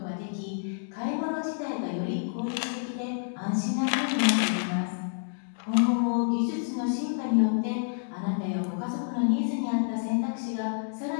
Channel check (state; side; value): silent; right; digital silence